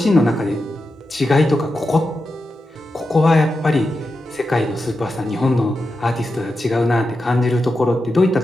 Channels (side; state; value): both; normal; correlation 0.89